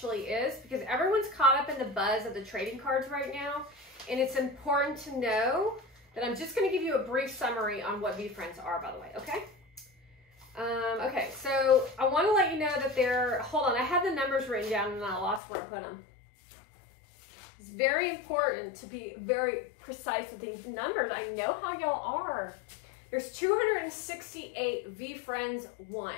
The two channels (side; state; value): right; drops out; at 15.4 s